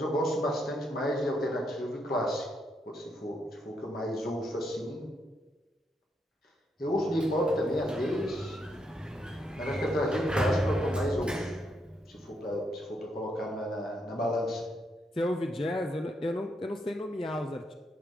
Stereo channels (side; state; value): both; normal; correlation 0.78